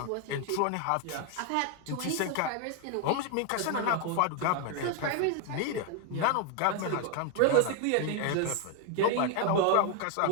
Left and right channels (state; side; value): different; both; correlation 0.00